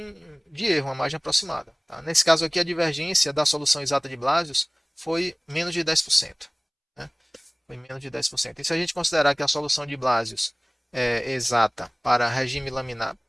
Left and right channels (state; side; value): identical; both; correlation 1.00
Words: de erro, uma margem aproximada. Tá? Nesse caso aqui, a divergência da solução exata de Blasius foi menos de 10%. Né? foi menos de 10%. E se a gente considerar que a solução de Blasius é exata para regime laminar,